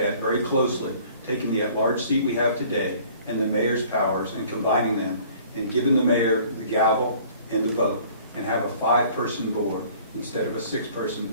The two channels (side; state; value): both; inverted; correlation -0.53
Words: very closely taking the at-large seat we have today and the mayor's powers and combining them and giving the mayor the gavel and the vote, and have a 5-person board instead of a 6-person